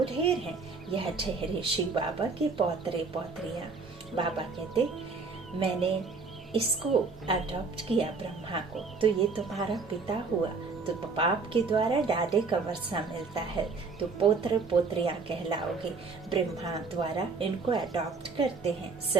ढेर हैं, यह ठहरे शिव बाबा के पौत्रे पौत्रियां। बाबा कहते, मैंने इसको अडॉप्ट किया ब्रह्मा को, तो ये तुम्हारा पिता हुआ। तो बाप के द्वारा डाडे का वर्षा मिलता है, तो पोत्र पोत्रियां कहलाओगे। ब्रह्मा द्वारा इनको अडॉप्ट करते हैं।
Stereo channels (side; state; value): left; quieter; 4.4 dB